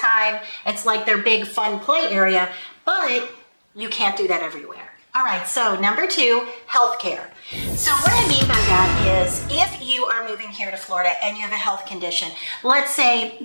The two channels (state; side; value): inverted; both; correlation -1.00